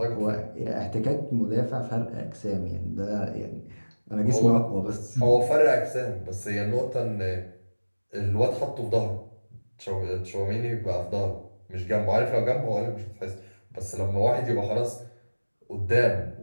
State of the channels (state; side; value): inverted; both; correlation -1.00